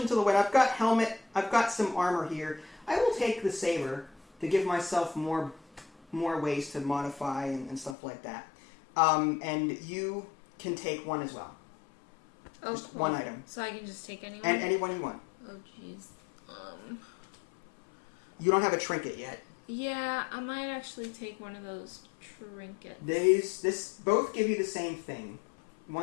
to the wind. I've got helmet. I've got some armor here. I will take the saber to give myself more ways to modify and stuff like that. And you can take one as well. Oh, just cool. one item. So I can just take anyone? And anyone you want. Oh, jeez. You don't have a trinket yet. Yeah, I might actually take one of those trinkets. This both give you the same thing.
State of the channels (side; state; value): right; drops out; at 8.0 s